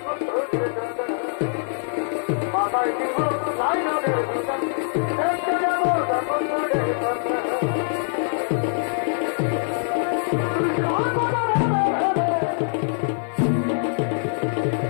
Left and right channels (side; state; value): right; silent; digital silence